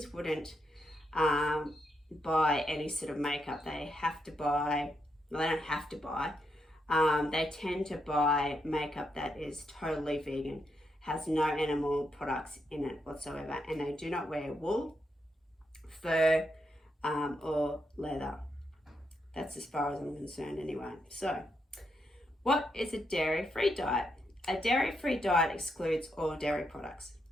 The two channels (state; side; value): normal; both; correlation 0.81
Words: wouldn't buy any sort of makeup. They have to buy, well, they don't have to buy. They tend to buy makeup that is totally vegan, has no animal products in it whatsoever, and they do not wear wool, fur, or leather. That's as far as I'm concerned anyway. So, what is a dairy-free diet? A dairy-free diet excludes all dairy products.